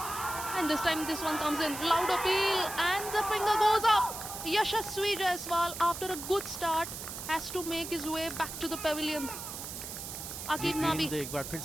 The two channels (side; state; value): right; noise; hiss, 8 dB below the sound